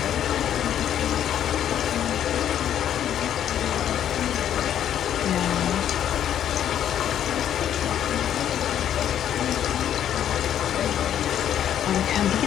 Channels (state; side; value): quieter; right; 10.2 dB